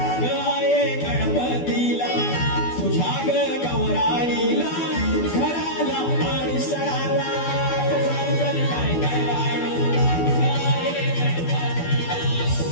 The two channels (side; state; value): right; late; 12 ms